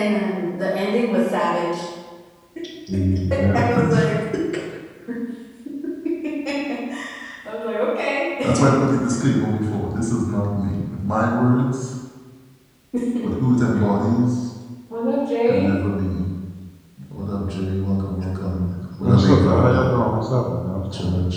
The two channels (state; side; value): identical; both; correlation 1.00